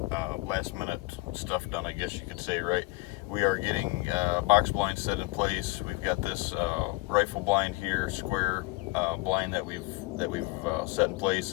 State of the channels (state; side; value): quieter; right; 22.7 dB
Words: last minute stuff done, I guess you could say, right? We are getting box blinds set in place. We've got this rifle blind here, square blind that we've set in